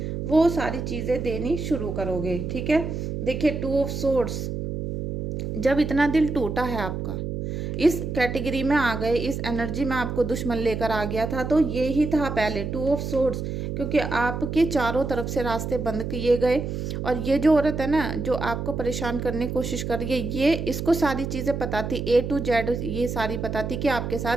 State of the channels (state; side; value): noise; right; hum, 4 dB below the sound